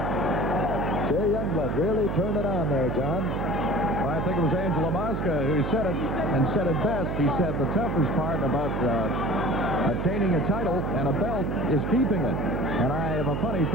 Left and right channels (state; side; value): noise; right; hum, 2 dB below the sound